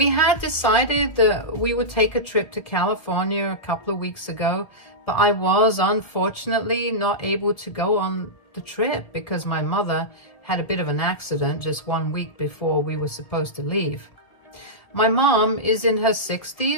had decided that we would take a trip to California a couple of weeks ago, but I was unfortunately not able to go on the trip because my mother had a bit of an accident just 1 week before we were supposed to leave. My mom is in her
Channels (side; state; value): right; late; 1.7 ms